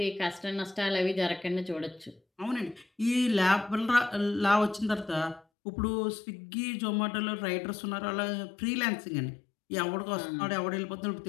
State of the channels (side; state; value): right; drops out; at 5.4 s